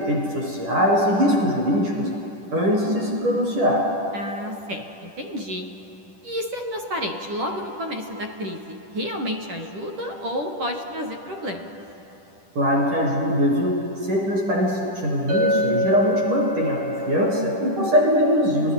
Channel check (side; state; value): left; late; 10 ms